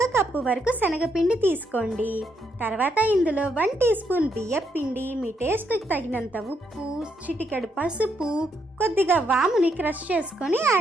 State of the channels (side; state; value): both; normal; correlation 0.76